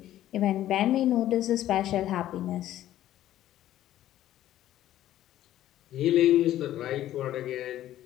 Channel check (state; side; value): quieter; right; 13.1 dB